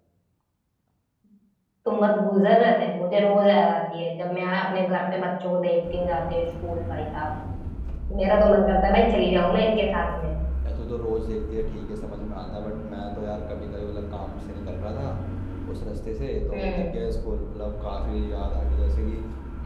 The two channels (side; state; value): both; identical; correlation 1.00